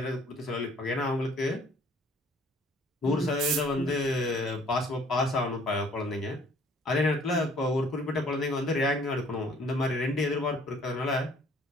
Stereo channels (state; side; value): normal; both; correlation 0.57